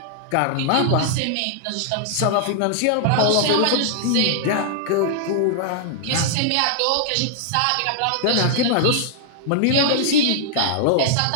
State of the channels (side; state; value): both; different; correlation -0.01